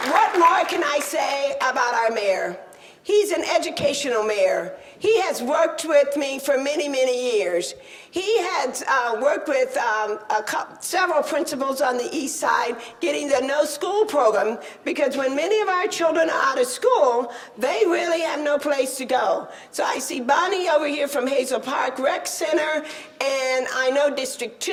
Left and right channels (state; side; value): identical; both; correlation 1.00